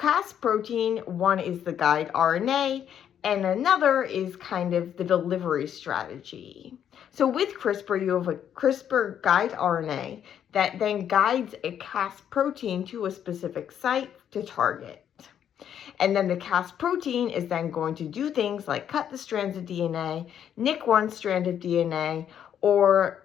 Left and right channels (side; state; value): right; quieter; 9.3 dB